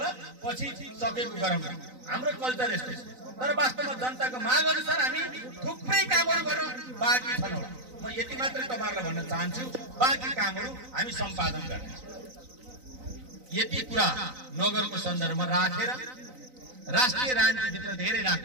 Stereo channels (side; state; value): left; late; 3.9 ms